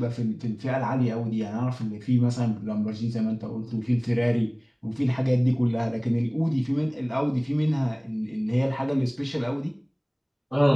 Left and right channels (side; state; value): both; identical; correlation 1.00